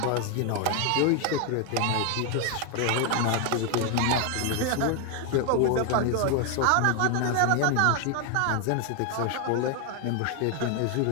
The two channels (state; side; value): different; both; correlation 0.01